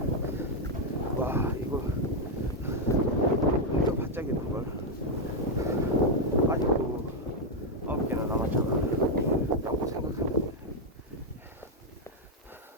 와, 이거 엄청 바짝이던 걸 아직도 9개나 남았잖아 라고 생각하면,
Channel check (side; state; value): both; normal; correlation 0.01